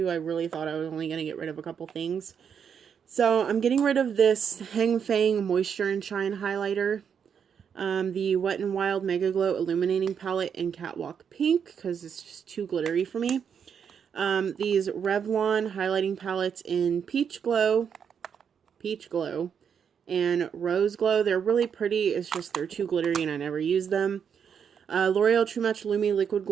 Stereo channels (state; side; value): quieter; left; 7.4 dB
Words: I really thought I was only going to get rid of a couple things. So I'm getting rid of this Hang Fang Moisture and Shine highlighter, the Wet n Wild Mega Glow Illuminating Palette in Catwalk Pink, because it's just too glittery for me. These Revlon highlighting palettes in Peach Glow, and Rose Glow. They're really pretty, it's just they're too glittery and I never use them. L'Oreal True Match Lumi Liquid